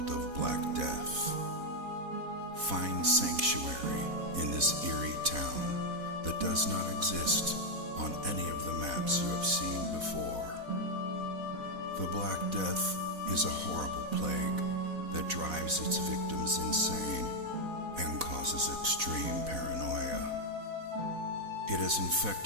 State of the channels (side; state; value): left; late; 4.1 ms